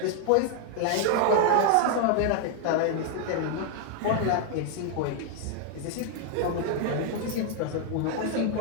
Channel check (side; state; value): both; different; correlation 0.00